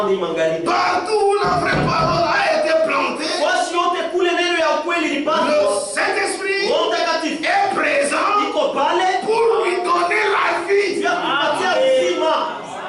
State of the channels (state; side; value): identical; both; correlation 1.00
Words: hii magharibi. Partout où la vraie parole a été plantée, wasi yote kule neno ya ukweli le lipandwa, Saint-Esprit Roho Mtakatifu est présent iko pale pour lui donner la vie. ya kupatia uzima.